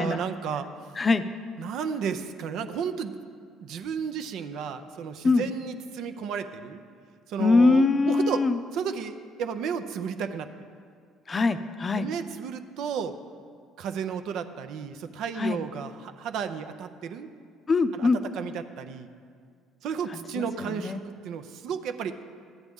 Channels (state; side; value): normal; both; correlation 0.77